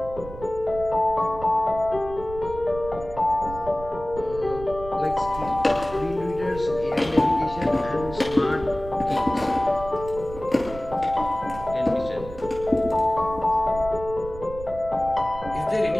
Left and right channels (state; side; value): noise; right; rumble, 13 dB below the sound